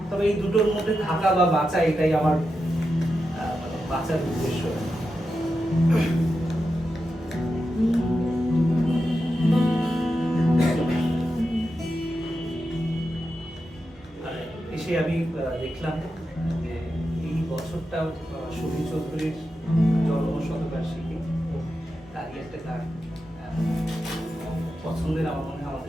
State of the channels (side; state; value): both; normal; correlation 0.89